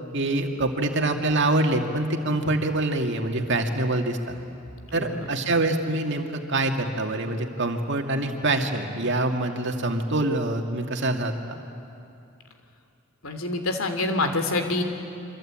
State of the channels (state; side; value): normal; both; correlation 0.23